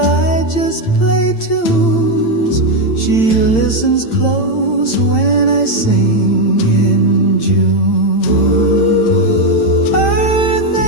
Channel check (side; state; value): right; late; 8.8 ms